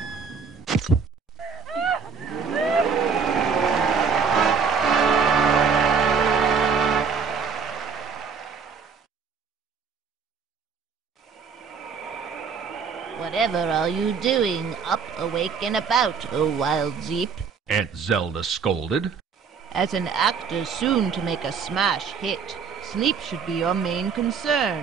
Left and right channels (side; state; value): left; quieter; 6.0 dB